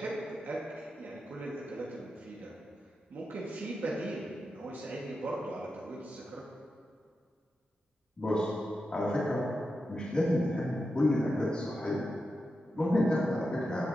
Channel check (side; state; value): both; normal; correlation 0.89